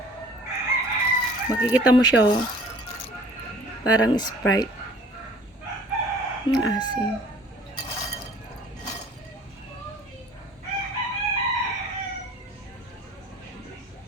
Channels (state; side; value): normal; both; correlation 0.51